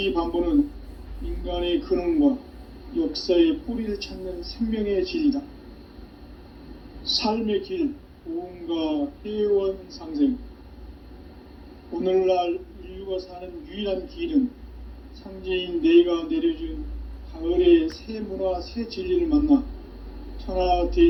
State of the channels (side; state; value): both; identical; correlation 1.00